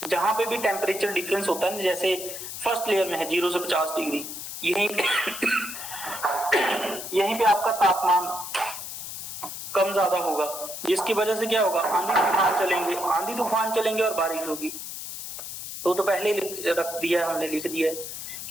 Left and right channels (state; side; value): noise; left; hiss, 8 dB below the sound